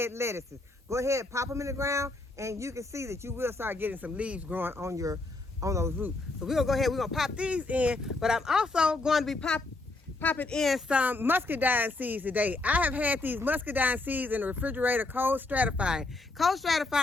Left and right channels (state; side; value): quieter; right; 3.1 dB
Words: lettuces. Go ahead, pop them in the ground, and you can see that you will start getting some leaves growing on those roots. So we're going to pop these in, but I'm also going to be popping in some muscadine seeds today. I have had these muscadine seeds in the refrigerator cold stratifying. Cold